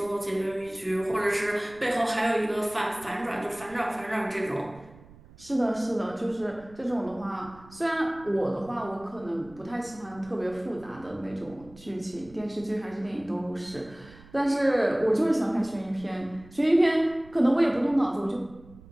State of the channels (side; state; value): right; noise; rumble, 22 dB below the sound